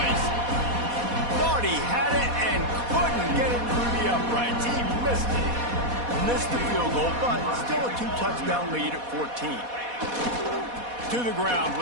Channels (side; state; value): left; late; 4.1 ms